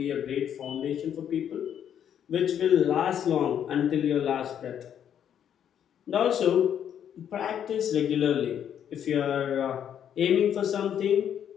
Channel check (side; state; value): right; quieter; 9.2 dB